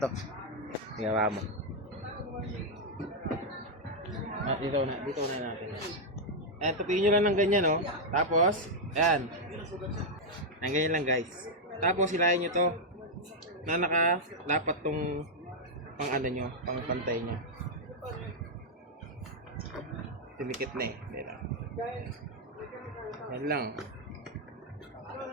to. Ginawa mo. Dito na natin. Ayan, tupiin nyo lang ng ganyan, no? Tapos, ayan. Ayan, ganyan lang, guys. Tapos, hilahin nyo to na nakalapat tong pang ano nyo, pang pantay nyo. Tumikit na eh. Yan lang.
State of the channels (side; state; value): both; normal; correlation -0.01